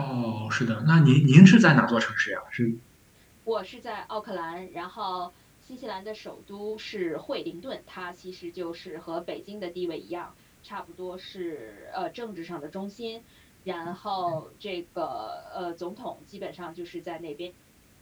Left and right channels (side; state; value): both; identical; correlation 1.00